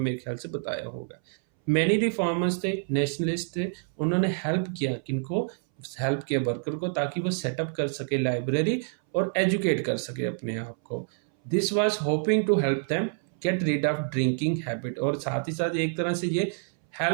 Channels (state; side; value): silent; left; 60 dB below the other